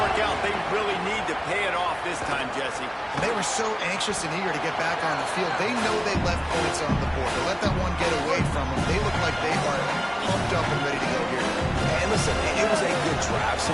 out. They really need to pay it off this time, Jesse. They were so anxious and eager to get back on the field. They know they left points on the board. To let that one get away from them, they look like they are pumped up and ready to go here. And listen, it was a good drive, so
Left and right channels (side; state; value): both; identical; correlation 1.00